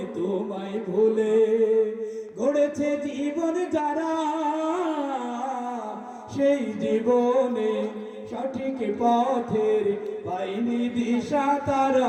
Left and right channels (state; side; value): identical; both; correlation 1.00